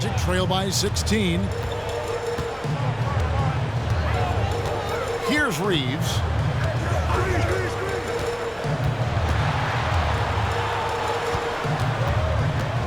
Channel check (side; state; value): both; identical; correlation 1.00